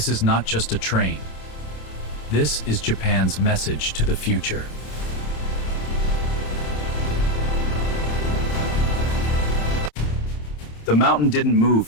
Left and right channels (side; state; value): right; late; 27 ms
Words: is not just a train. This is Japan's message to the future. The mountain didn't move